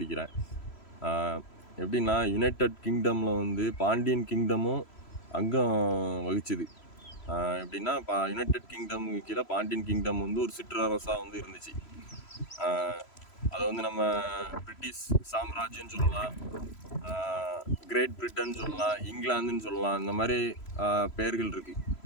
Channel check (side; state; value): right; late; 3.0 ms